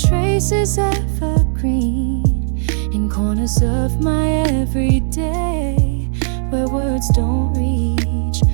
is evergreen in corners of my everyday, where words don't reach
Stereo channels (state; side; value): silent; left; digital silence